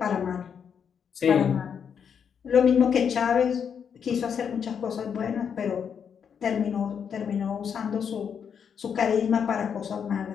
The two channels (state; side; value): quieter; right; 7.3 dB